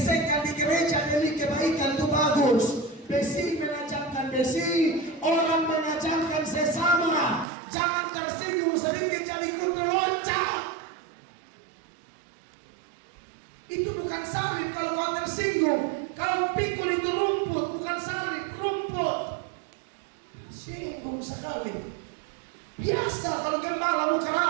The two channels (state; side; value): drops out; left; at 7.5 s